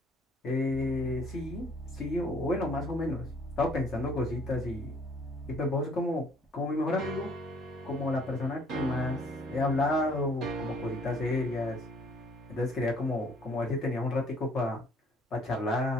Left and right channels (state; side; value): normal; both; correlation 0.59